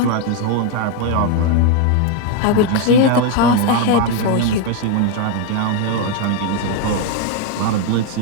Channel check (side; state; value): both; different; correlation 0.01